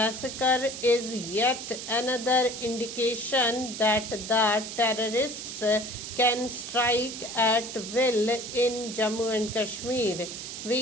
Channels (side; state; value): right; noise; hiss, 8 dB below the sound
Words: is yet another indication that the terrorists can strike at will in Jammu and Kashmir.